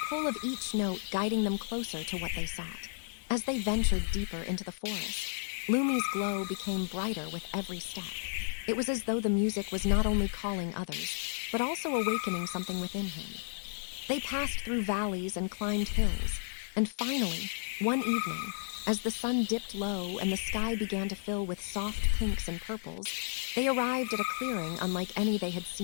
pull of each note guiding them closer to what they sought. As they ventured deeper into the forest, Lumi's glow became brighter with every step. It was as though the music was not only calling others, but also awakening something within him. They passed through valleys and climbed hills, and finally, one evening, as the sun dipped low and the sky began to fill with soft pinks and purples, they arrived at a clearing unlike any they had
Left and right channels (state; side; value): silent; right; digital silence